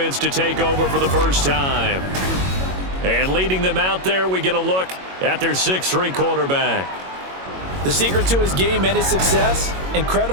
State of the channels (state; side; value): late; left; 22 ms